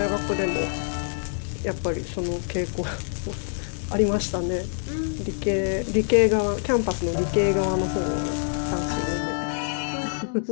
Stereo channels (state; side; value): silent; right; digital silence